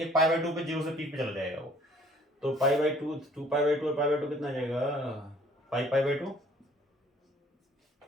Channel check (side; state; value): both; normal; correlation 0.56